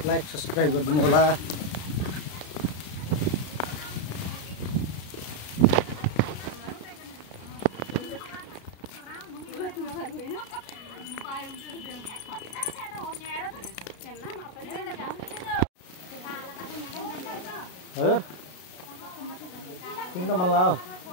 लाइक सब्सक्राइब गरिदिनु होला हजुर किन त मन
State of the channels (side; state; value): right; late; 33 ms